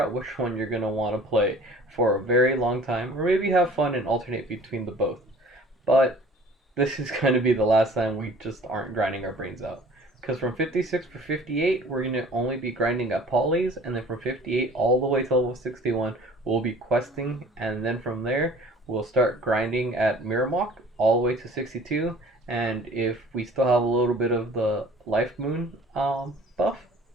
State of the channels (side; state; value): both; normal; correlation 0.49